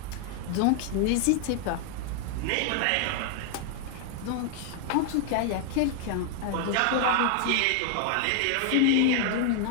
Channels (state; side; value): different; both; correlation 0.00